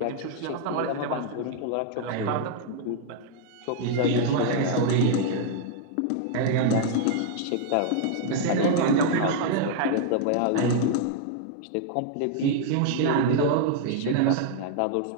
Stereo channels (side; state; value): both; different; correlation 0.00